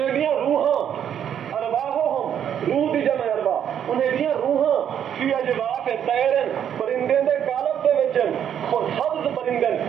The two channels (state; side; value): quieter; left; 9.2 dB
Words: بھی روحاں ارواحہم روح دی جمع ارواح انہیں بھی روحاں فی اجواف طیرن پرندے دے قالب دے وچن اور سبز پرندن